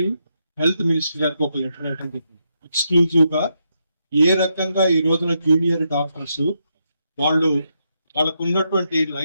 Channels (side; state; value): both; inverted; correlation -0.81